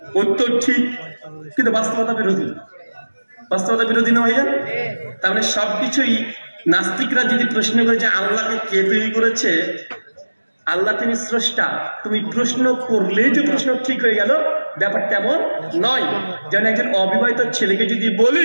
উত্তর ঠিক, কিন্তু বাস্তবতা বিরোধী। বাস্তবতা বিরোধী না ভাইজান? তার মানে সবকিছুই নাস্তিকরা যদি প্রশ্ন করে যে আল্লাহকে কে তৈরি করেছে, আল্লাহ তিনি স্রষ্টা, তুমি প্রশ্ন করলেই যে প্রশ্ন ঠিক হয়ে গেল, ব্যাপারটা এমন নয়। যেমন একজন অবিবাহিত ছেলেকে যদি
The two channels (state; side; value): inverted; both; correlation -1.00